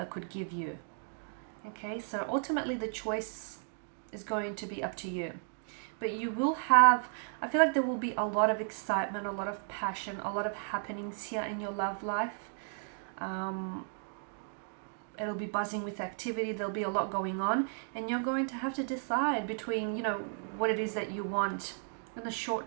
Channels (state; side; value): silent; left; digital silence